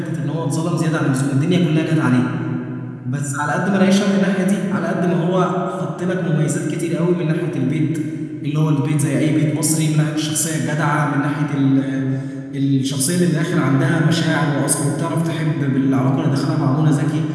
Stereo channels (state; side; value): identical; both; correlation 1.00